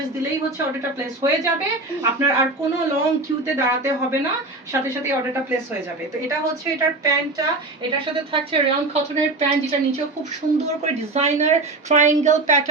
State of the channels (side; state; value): left; quieter; 3.1 dB